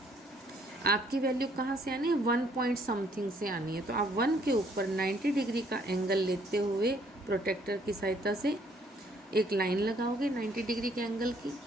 आपकी वैल्यू कहाँ से आनी है, 1 पॉइंट समथिंग से आनी है। तो आप 1 के ऊपर 90 डिग्री का एंगल लेते हुए प्रोटेक्टर की सहायता से एक लाइन लगाओगे 90 डिग्री के एंगल की,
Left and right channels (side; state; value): both; normal; correlation 0.64